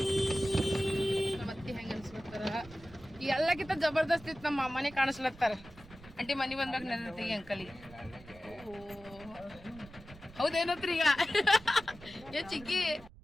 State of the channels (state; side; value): noise; right; rumble, 19 dB below the sound